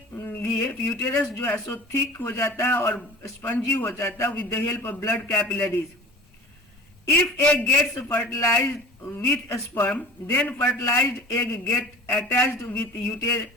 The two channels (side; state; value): both; normal; correlation 0.42